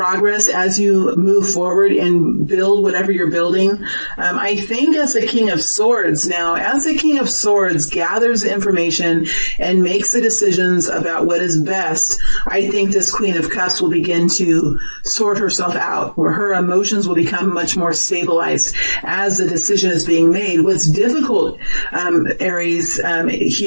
as you move forward and build whatever you're building. I think as the King of Swords gathers information and makes the decisions about what is best, I think this Queen of Cups will begin to sort herself out, where her emotions will become much more stabilized as the decision is being made. What's difficult, Aries,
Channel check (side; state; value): both; inverted; correlation -1.00